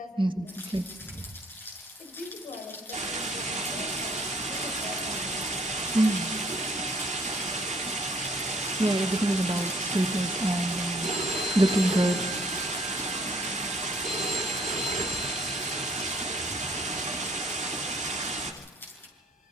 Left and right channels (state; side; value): normal; both; correlation 0.62